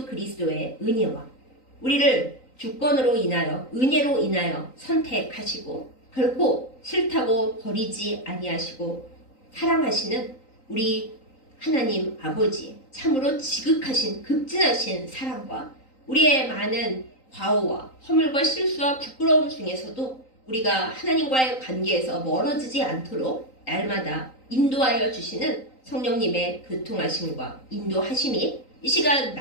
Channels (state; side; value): late; right; 3.9 ms